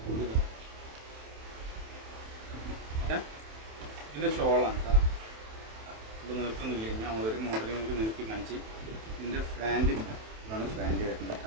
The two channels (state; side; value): late; left; 27 ms